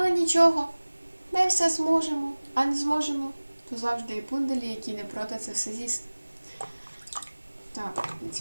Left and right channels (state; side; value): inverted; both; correlation -1.00